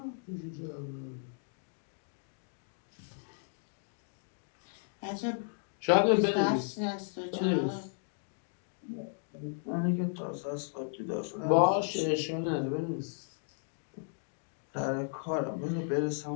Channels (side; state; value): right; silent; digital silence